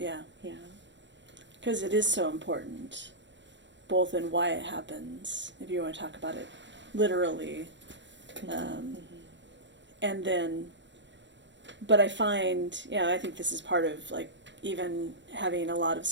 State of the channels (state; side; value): late; left; 0.53 ms